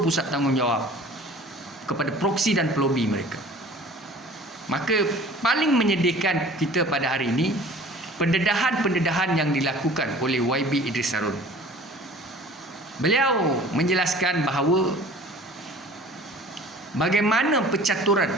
pusat tanggungjawab kepada proksi dan pelobi mereka. Maka paling menyedihkan kita pada hari ini, pendedahan-pendedahan yang dilakukan oleh YB Idris Harun. Beliau menjelaskan bahawa bagaimana pencaturan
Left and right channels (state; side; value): normal; both; correlation 0.46